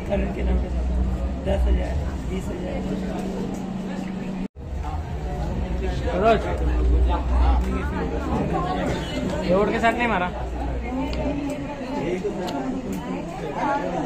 करण के नाम के साथ 10,000 20,000। रोड के साथ नहीं मारा।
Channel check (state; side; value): identical; both; correlation 1.00